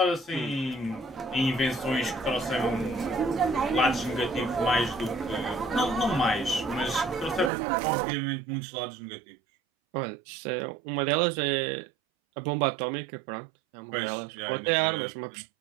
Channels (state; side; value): drops out; left; at 7.5 s